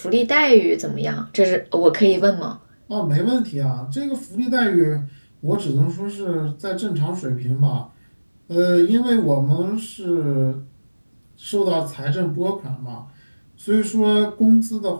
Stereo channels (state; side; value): inverted; both; correlation -1.00